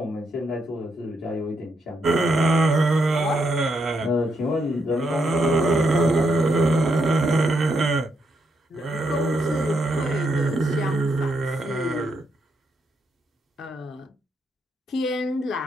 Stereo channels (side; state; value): both; normal; correlation 0.79